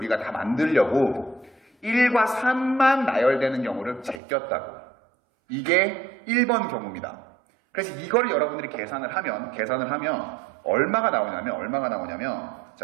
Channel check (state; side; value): drops out; left; at 4.2 s